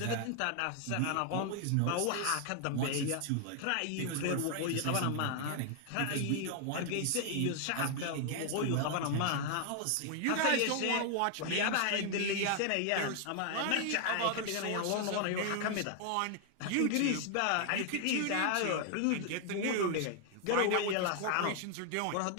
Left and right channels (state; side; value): different; both; correlation 0.00